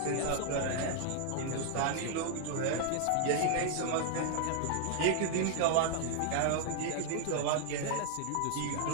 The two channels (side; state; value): both; different; correlation 0.00